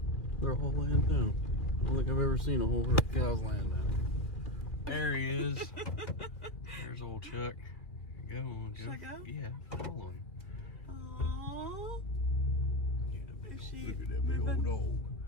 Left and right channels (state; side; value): late; right; 2.5 ms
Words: They're all laying down. I don't think I've ever seen a whole herd of cows laying down. There he is. There's old Chuck. Go on, go. Should I go? Yeah, follow him. Aww. Is she Look at that big old dog.